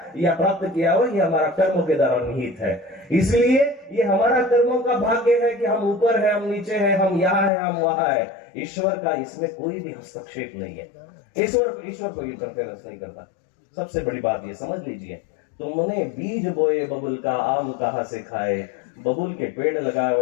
या प्राप्त किया हुआ, ये हमारा कर्मों के द्वारा निहित है। इसलिए ये हमारा कर्मों का भाग्य है कि हम ऊपर है, हम नीचे है, हम यहाँ है, हम वहां है। ईश्वर का इसमें कोई भी हस्तक्षेप नहीं है। ईश्वर को इंटरफेरेंस नहीं करता। सबसे बड़ी बात ये समझ लीजिए, तुमने बीज बोए बबुल का, आम कहां से खाए। बबुल के पेड़ लगाए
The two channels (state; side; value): drops out; right; at 7.5 s